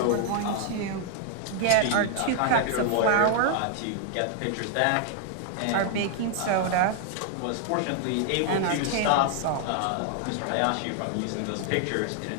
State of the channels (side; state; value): both; different; correlation 0.00